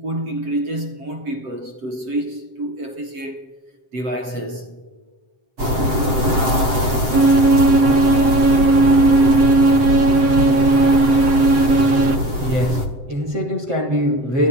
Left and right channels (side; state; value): left; late; 7.6 ms